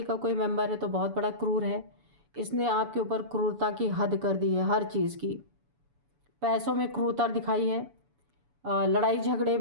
का कोई मेंबर है तो बहुत बड़ा क्रूर है। इसने आपके ऊपर क्रूरता की हद कर दी है, हर चीज़ की। पैसों में क्रूरता दिखाई है, लड़ाई झगड़े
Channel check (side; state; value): left; late; 7.0 ms